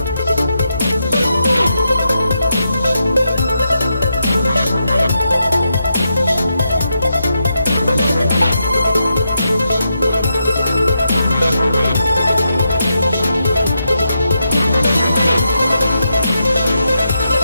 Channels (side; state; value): both; inverted; correlation -0.84